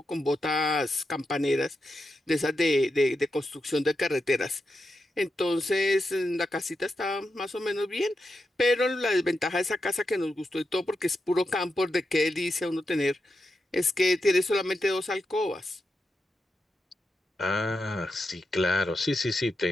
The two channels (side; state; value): both; normal; correlation 0.87